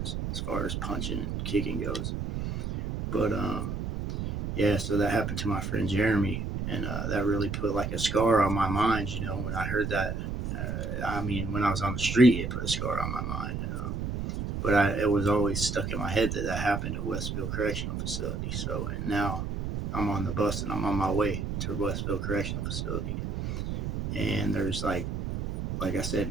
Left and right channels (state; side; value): noise; right; rumble, 3 dB below the sound